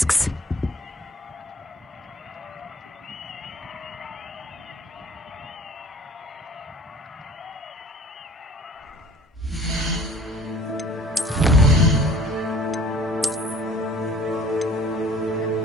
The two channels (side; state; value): both; normal; correlation 0.50